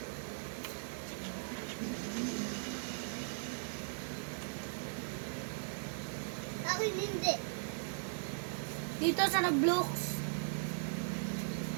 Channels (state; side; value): silent; left; digital silence